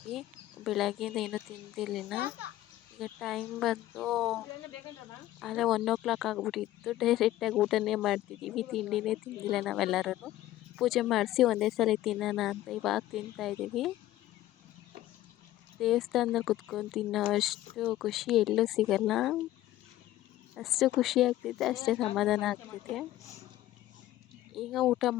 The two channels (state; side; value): quieter; right; 14.8 dB